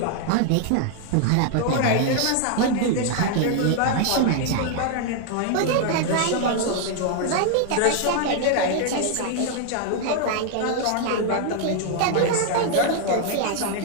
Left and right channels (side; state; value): both; different; correlation 0.00